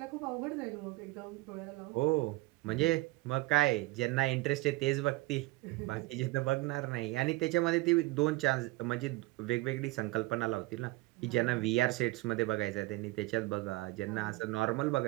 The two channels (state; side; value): quieter; left; 20.2 dB